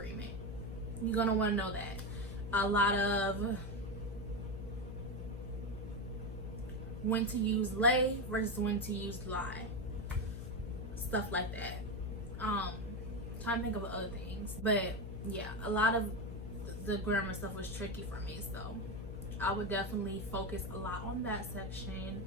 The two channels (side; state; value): left; noise; hum, 7 dB below the sound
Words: You're gonna want to know that. A lot of when to use lay versus when to use lie, stuff like that. Trying to think of other things, but yeah, a lot of the grammar stuff was tricky for me, so I would definitely focus a lot on that section.